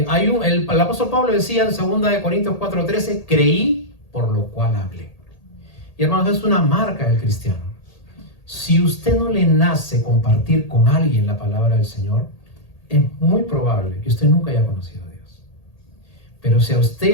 apóstol Pablo decía en 2 Corintios 4:13, creí, por lo cual hablé. Y hermanos, es una marca del cristiano. Si usted no le nace compartir con alguien la palabra del Señor, es muy probable que usted nunca haya conocido a Dios. Pero si a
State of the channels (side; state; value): right; late; 1.8 ms